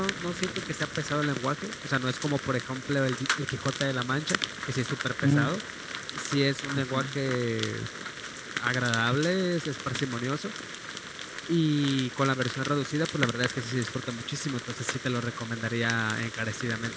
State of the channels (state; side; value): identical; both; correlation 1.00